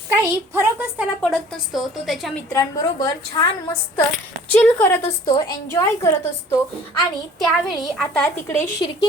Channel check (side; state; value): both; normal; correlation 0.50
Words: काही फरकच त्याला पडत नसतो, तो त्याच्या मित्रांबरोबर छान मस्त चिल करत असतो, एन्जॉय करत असतो। आणि त्यावेळी आता तिकडे